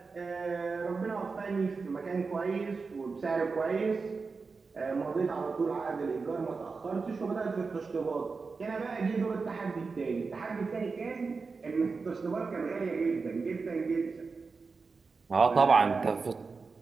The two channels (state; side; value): quieter; left; 4.5 dB